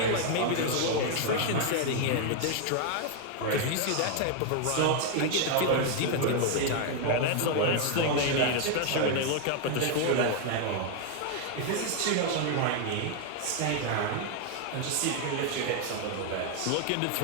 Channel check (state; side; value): different; both; correlation 0.01